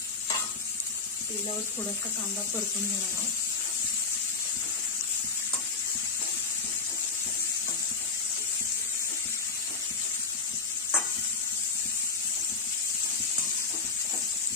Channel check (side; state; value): right; quieter; 4.8 dB